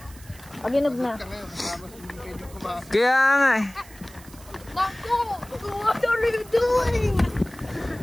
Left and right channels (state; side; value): noise; right; hiss, 21 dB below the sound